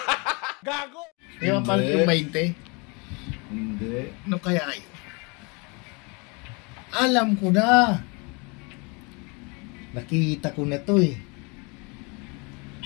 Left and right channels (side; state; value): right; quieter; 30.3 dB